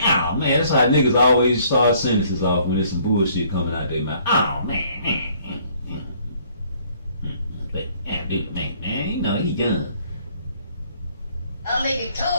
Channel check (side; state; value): both; inverted; correlation -0.62